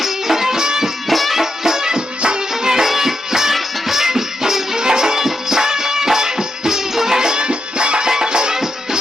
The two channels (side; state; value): both; normal; correlation 0.84